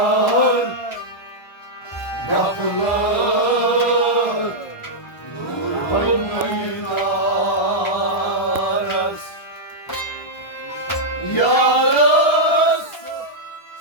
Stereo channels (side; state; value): right; late; 1.2 ms